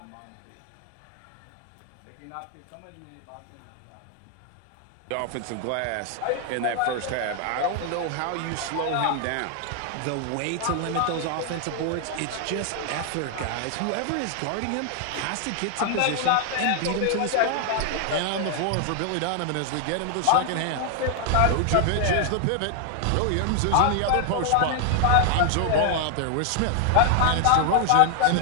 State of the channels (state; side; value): different; both; correlation 0.00